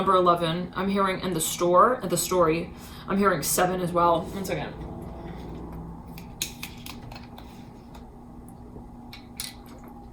11. I'm hearing in the story. I'm hearing 7 as well. 1 second.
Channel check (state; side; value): identical; both; correlation 1.00